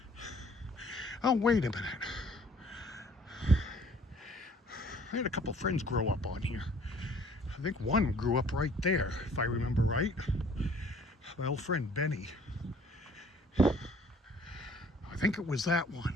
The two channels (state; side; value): normal; both; correlation 0.56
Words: Oh, wait a minute. I had a couple friends grow up on here. I think one grew up right there, if I remember right. My old friend Benny. I think it was that